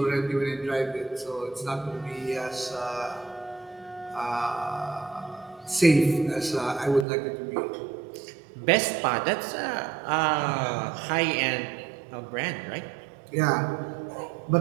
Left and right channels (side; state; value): left; drops out; at 7.1 s